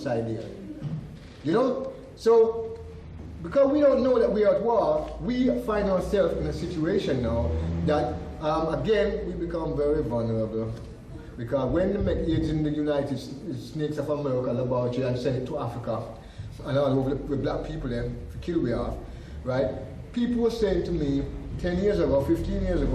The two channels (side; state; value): both; identical; correlation 1.00